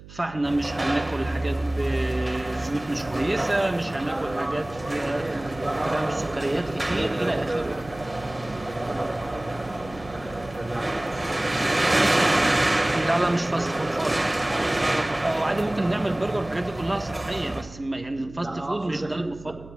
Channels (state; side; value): noise; right; hum, 18 dB below the sound